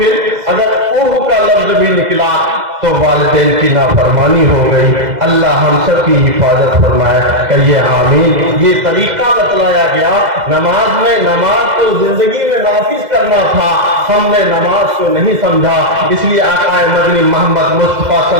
अगर ऊह का लफ्ज भी निकला तो वालिदैन की नाफरमानी हो गई। अल्लाह हम सब की हिफाजत फरमाए, कहिए आमीन। ये तरीका बतलाया गया नमाज में। नमाज को जिंदगी में नाफिज करना था, हमने नमाज को नहीं समझा। इसलिए आका मदनी मोहम्मद मुस्तफा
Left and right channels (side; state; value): left; late; 2.0 ms